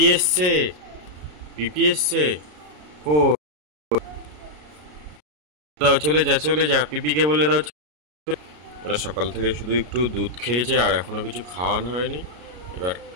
এসছে, পিপি এসছে। কো দাও, চলে যা চলে যা, পিপিকে বলে দাও। ওরা সকাল থেকে শুধু একটু দুধ খেয়েছে আর এখনো কিছু খাওয়ানো হয়নি। এবার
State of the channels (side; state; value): left; late; 33 ms